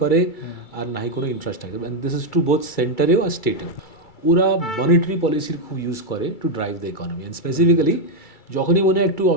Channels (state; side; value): late; right; 2.3 ms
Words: করে আর নাই কোনো infrastructure, and this is to both সেন্টারেও আর স্টেটেও। ওরা মনিটারি পলিসির খুব ইউজ করে to drive the economy, and specifically যখনই মনে হয় একটু